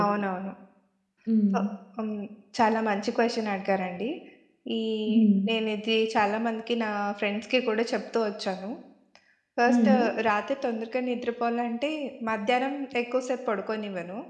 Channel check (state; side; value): identical; both; correlation 1.00